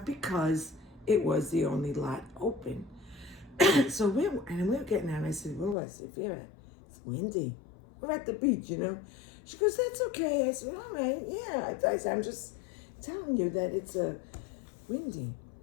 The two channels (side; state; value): right; drops out; at 5.8 s